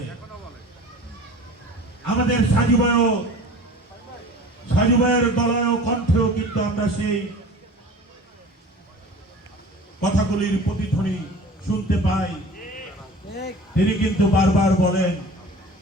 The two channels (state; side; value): normal; both; correlation 0.41